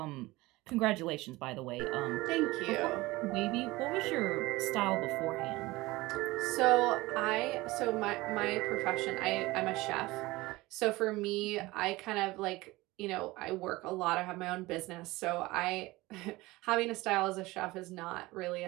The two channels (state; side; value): quieter; left; 20.3 dB